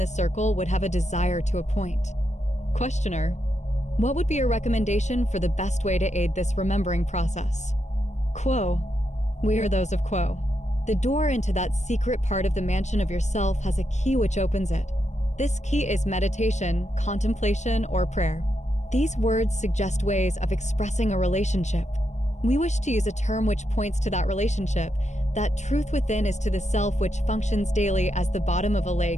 circle would have a desire to appoint. Questioner: what would be your recommendation for the best way to aid this remembering process? Q'uo: we are those of Q'uo. The door into that secret part of the mansion of yourself has a key which opens it. This key is meditation, contemplation, or prayer. These words suggest ways of expressing a relationship. We wish to use a term which points to that relationship. That truth within is to the self which functions daily as the bottom of a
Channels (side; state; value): right; late; 0.34 ms